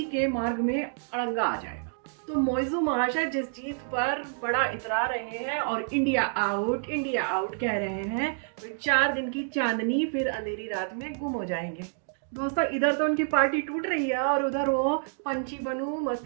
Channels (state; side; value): silent; left; digital silence